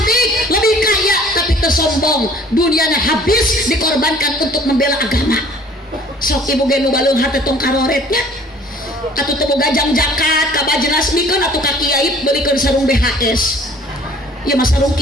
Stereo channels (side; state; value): both; normal; correlation 0.52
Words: lebih kaya, tapi tersombong. Dunianya habis dikorbankan untuk membela agama. Sok ibu ge nu balung hate tong karoretnya. Atuh teu boga jang zakat ka bajenas mikeun atuh ka kiai beulikeun sarung BHS. Ya mas sarung